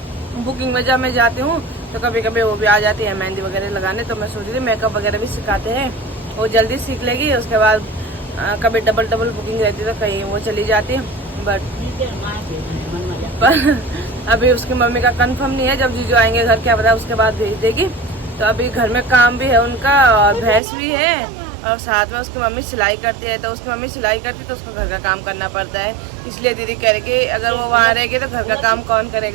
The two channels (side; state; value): left; drops out; at 20.6 s